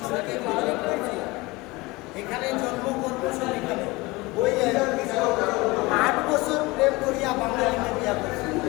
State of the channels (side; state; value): right; quieter; 22.8 dB